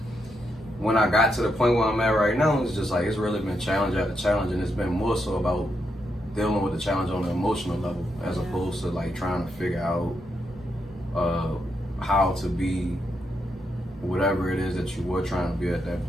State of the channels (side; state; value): both; normal; correlation 0.81